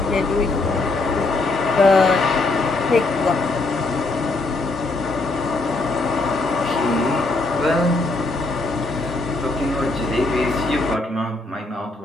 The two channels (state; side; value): quieter; right; 3.2 dB